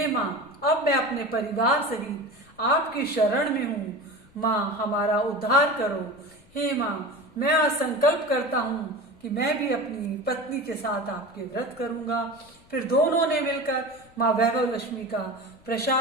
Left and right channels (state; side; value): noise; left; rumble, 28 dB below the sound